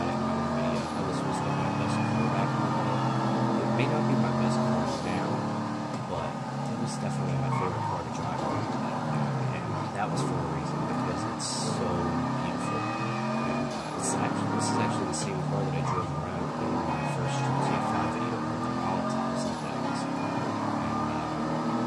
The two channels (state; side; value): identical; both; correlation 1.00